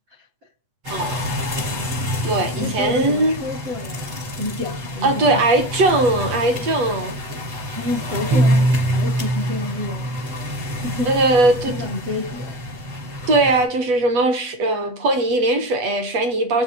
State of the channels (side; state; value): left; late; 8.1 ms